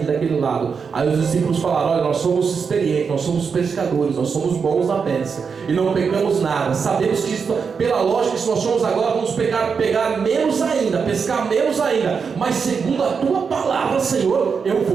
daquele lado. Aí os discípulos falaram: olha, nós somos experientes, nós somos pescadores, nós somos bons na pesca e não pegamos nada. Sabemos que isso, pela lógica, se nós somos agora, vamos pegar menos ainda, pescar menos ainda. Mas segundo a tua palavra, Senhor, eu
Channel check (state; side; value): quieter; left; 5.8 dB